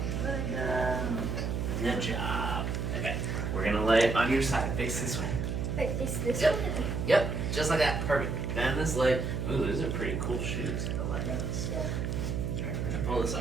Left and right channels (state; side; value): noise; right; hum, 1 dB below the sound